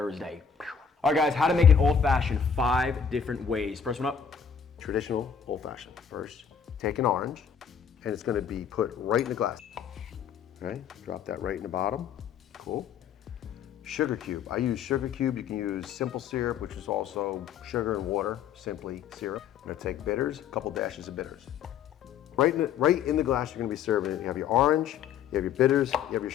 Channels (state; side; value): quieter; right; 7.4 dB